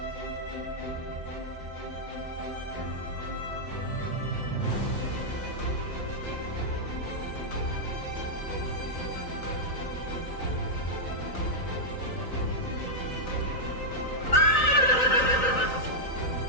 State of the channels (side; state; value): right; late; 3.9 ms